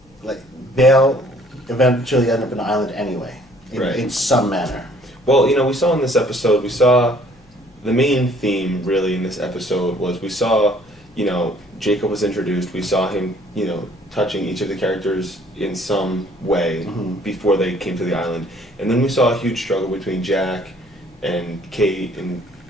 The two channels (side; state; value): left; noise; hum, 29 dB below the sound